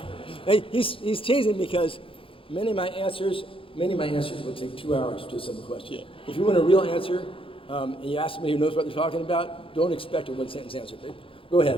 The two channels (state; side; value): late; right; 0.26 ms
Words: Hey, he's teasing because many of my answers will take 2 hours to a simple question. Yeah. If you want a real answer, and you ask somebody who knows what they're talking about, don't expect a one-sentence answer. Okay? Go